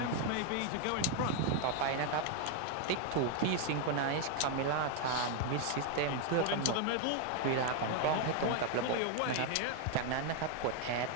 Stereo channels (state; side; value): different; both; correlation 0.01